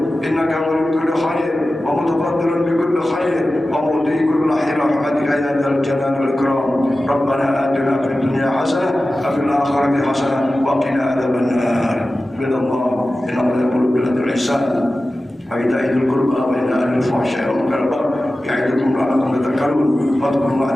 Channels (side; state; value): both; normal; correlation 0.95